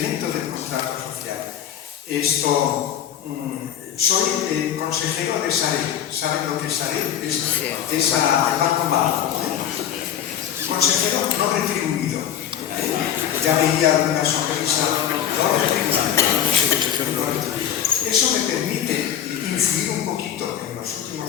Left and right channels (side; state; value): right; quieter; 9.9 dB